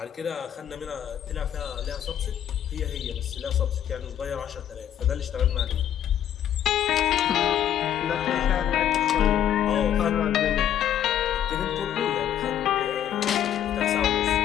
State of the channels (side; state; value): right; quieter; 10.5 dB